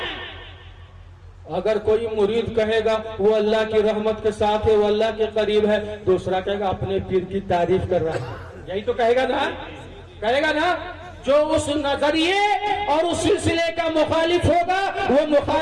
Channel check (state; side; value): identical; both; correlation 1.00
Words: اگر کوئی مرید کہے گا وہ اللہ کی رحمت کے ساتھ ہے وہ اللہ کے قریب ہے دوسرا کہے گا اپنے پیر کی تعریف کر رہا ہے یہی تو کہے گا نا جو اس نظریے اور اس سلسلے کا مخالف ہوگا وہ